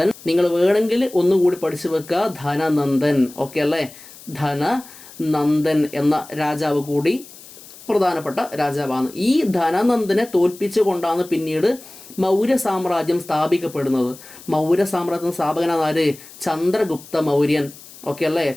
നിങ്ങൾ വേണമെങ്കിൽ ഒന്നുകൂടി പഠിച്ചു വെക്കുക, ധനനന്ദൻ. ഓക്കെ അല്ലേ? ധനനന്ദൻ എന്ന രാജാവ് കൂടി പ്രധാനപ്പെട്ട രാജാവാണ്. ഈ ധനനന്ദനെ തോൽപ്പിച്ചുകൊണ്ടാണ് പിന്നീട് മൗര്യ സാമ്രാജ്യം സ്ഥാപിക്കപ്പെടുന്നത്. മൗര്യ സാമ്രാജ്യത്തിൻ്റെ സ്ഥാപകനാണ് ആര്? ചന്ദ്രഗുപ്ത മൗര്യൻ. ഓക്കെ അല്ലേ?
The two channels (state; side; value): noise; left; hiss, 19 dB below the sound